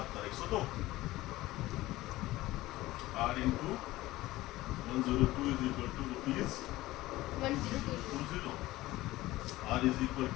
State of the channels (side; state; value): right; quieter; 17.6 dB